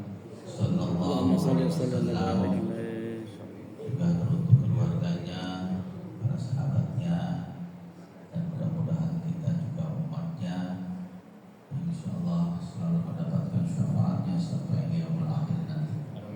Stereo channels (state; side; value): identical; both; correlation 1.00